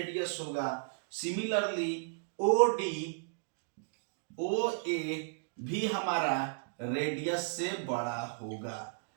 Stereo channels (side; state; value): left; silent; digital silence